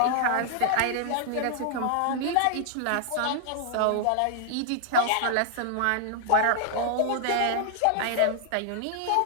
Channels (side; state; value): both; different; correlation -0.01